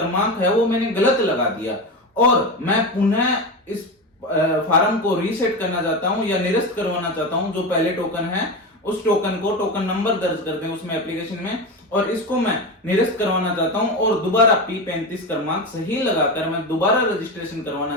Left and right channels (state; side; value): normal; both; correlation 0.20